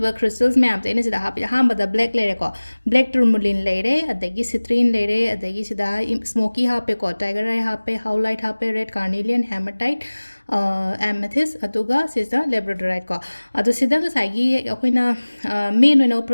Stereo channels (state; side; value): inverted; both; correlation -1.00